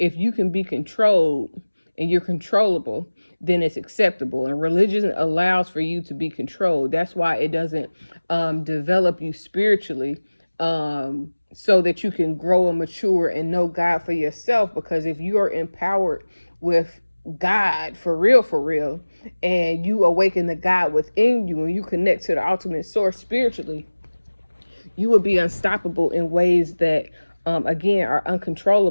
you can be controlled and you're controllable, then it's acceptable. And religion allows for you to be controlled. That's why it doesn't develop you spiritually so that you can grow and mature and know God for yourself. Because if you are empowered with God for real, and you awaken the God within you and you connect to the ultimate source spiritually, you will be unstoppable in ways that, again, are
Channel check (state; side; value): inverted; both; correlation -1.00